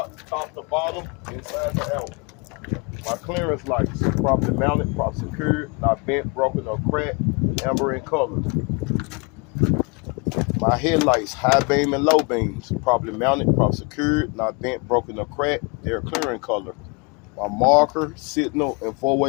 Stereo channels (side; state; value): right; quieter; 31.4 dB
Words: top to bottom, inside to out. My clearance lights, properly mounted, properly secured, not bent, broken, or cracked, amber in color. My headlights, high beam and low beams, properly mounted, properly secured, not bent, broken, or cracked, they're clear in color. My marker, signal, and